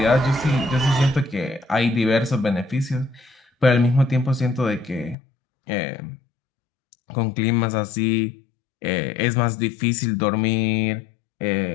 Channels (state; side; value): drops out; right; at 5.2 s